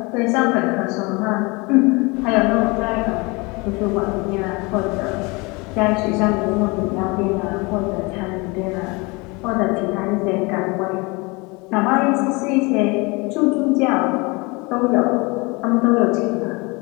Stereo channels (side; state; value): right; quieter; 26.8 dB